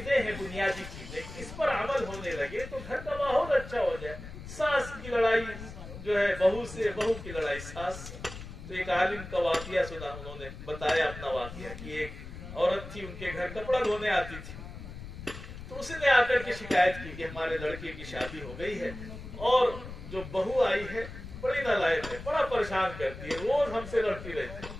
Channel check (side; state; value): left; noise; rumble, 12 dB below the sound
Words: हैं, बुनियादी चीजें, इस पर अमल होने लगे तो घर का माहौल अच्छा हो जाए। सास की लड़ाई जो है बहू से, बहू की लड़ाई सास से। तो एक आलिम का वाकया सुना, उन्होंने बताया अपना वाकया कि एक औरत थी, उनके घर कपड़ा धोने आती थी, तो उसने आकर के शिकायत की कि हमारे लड़के की शादी हो गई है और जो बहू आई है बड़ी नालायक है, बड़ा परेशान करती है, रोज हमसे लड़ती रहती है।